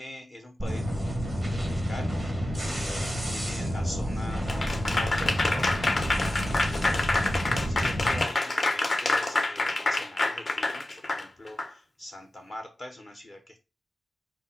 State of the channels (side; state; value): both; normal; correlation 0.93